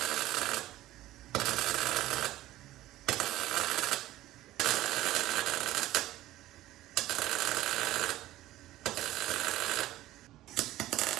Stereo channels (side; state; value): left; quieter; 15.4 dB